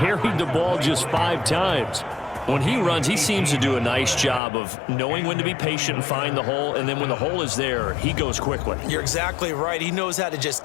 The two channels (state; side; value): drops out; right; at 4.4 s